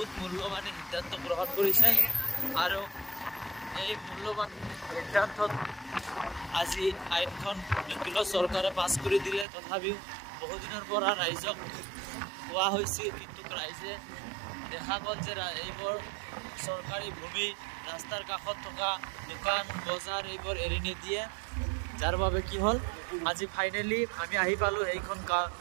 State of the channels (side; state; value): left; drops out; at 9.5 s